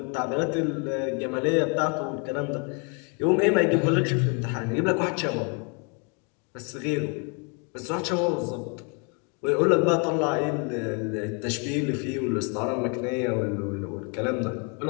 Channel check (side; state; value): right; quieter; 34.8 dB